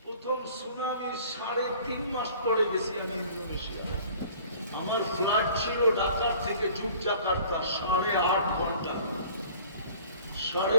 প্রথম সুনামির 3.5 মাস পরে গেছি আমি ইন্দোনেশিয়া। আমার ফ্লাইট ছিল ঢাকা থেকে জাকার্তা 8.5 ঘন্টা।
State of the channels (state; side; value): inverted; both; correlation -0.49